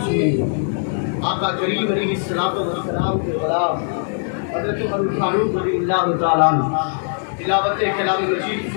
سنی، آقا کریم علیہ السلام کے غلام حضرت عمر فاروق رضی اللہ تعالیٰ تلاوت کلام مجید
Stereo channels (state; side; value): silent; right; 65 dB below the other